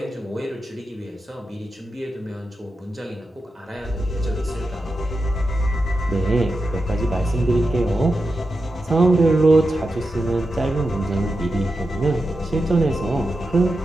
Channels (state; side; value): normal; both; correlation 0.89